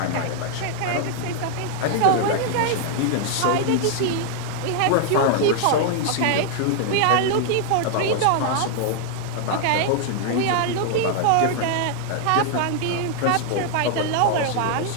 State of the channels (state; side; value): different; both; correlation 0.00